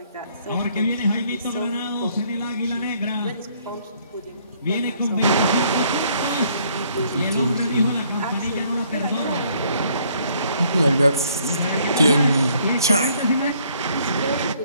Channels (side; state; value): both; inverted; correlation -0.64